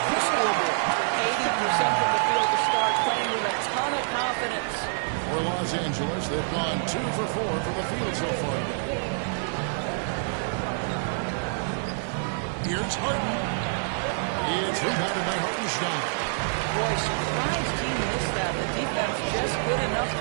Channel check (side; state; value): left; silent; digital silence